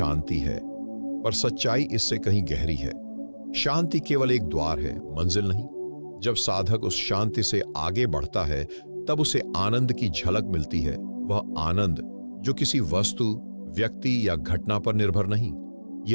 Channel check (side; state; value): both; inverted; correlation -1.00